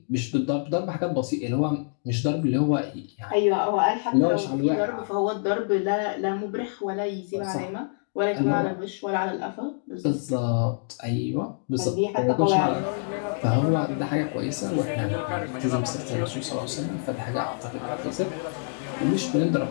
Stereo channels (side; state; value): right; silent; digital silence